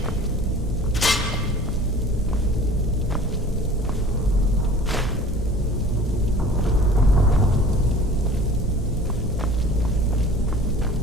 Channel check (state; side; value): normal; both; correlation 0.45